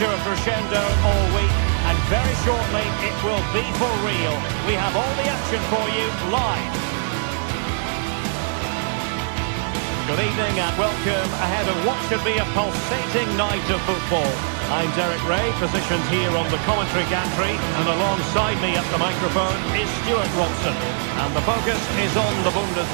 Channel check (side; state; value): left; silent; 64 dB below the other